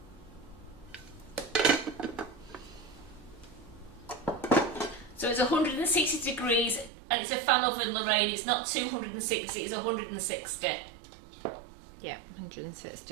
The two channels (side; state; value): left; drops out; at 6.9 s